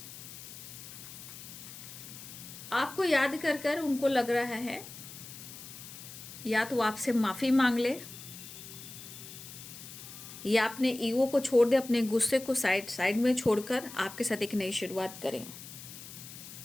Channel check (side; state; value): left; noise; hiss, 13 dB below the sound